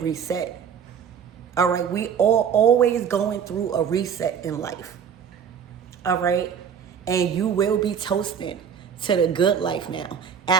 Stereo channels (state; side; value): quieter; left; 7.6 dB